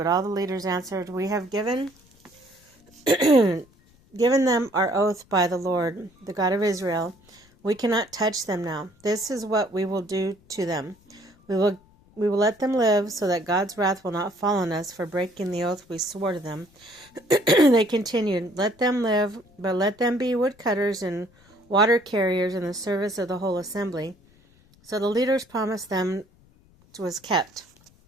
all the leaders answered, "We have given them our oath by the Lord, the God of Israel. We cannot touch them now. This is what we will do to them. We will let them live so that God's wrath will not fall on us for breaking the oath we swore to them." They continued, "Let them live, but let them be woodcutters and water carriers in the service of the whole assembly." So the leaders' promise them was kept.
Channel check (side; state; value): left; noise; rumble, 30 dB below the sound